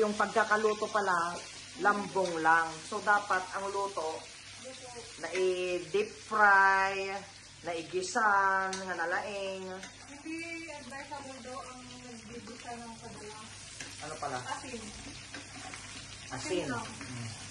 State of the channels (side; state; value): both; identical; correlation 1.00